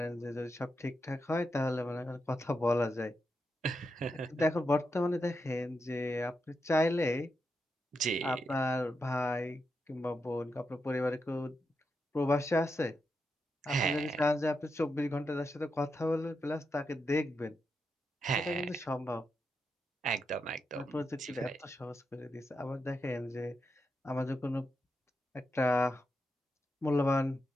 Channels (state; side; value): normal; both; correlation 0.85